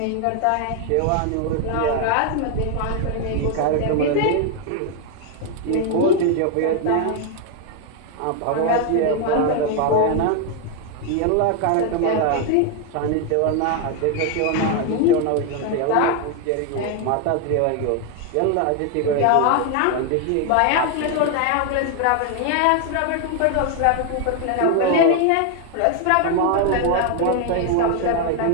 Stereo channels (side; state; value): both; different; correlation 0.01